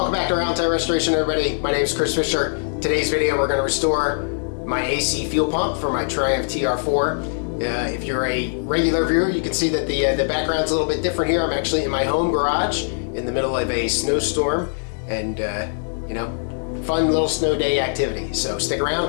back to Roundtail Restoration, everybody. My name is Chris Fisher. Today's video, we're going to restore my AC fuel pump for my Triumph TR4. If you're a regular viewer, you can see that the background's a little bit different here. I'm actually in my home garage in the middle of a snowstorm and, you know, fun little snow day activity. So stick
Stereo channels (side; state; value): right; silent; digital silence